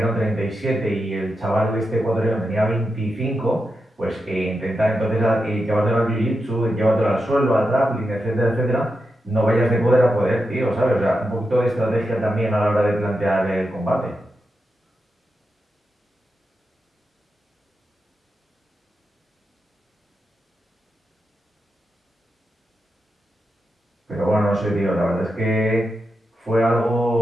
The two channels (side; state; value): both; normal; correlation 0.87